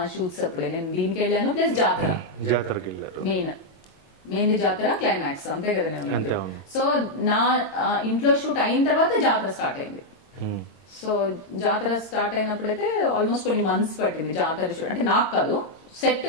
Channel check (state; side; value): late; right; 22 ms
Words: షూట్స్ అప్పుడే, నేను దీనికి వెళ్ళాను ప్లస్ జాతరకి వెళ్ళారు. మెయిన్ జాతర క్లైమాక్స్ అంతే కదా నేను. సో నా ఇంట్లో షూట్ అయిన తర్వాత జాతర స్టార్ట్ అయింది. సో జాతర స్టార్ట్ అయినప్పుడైతే ఆల్మోస్ట్ కొన్ని మంత్స్ పట్టింది జాతర షూట్. అంటే నాకు కాదు, సెట్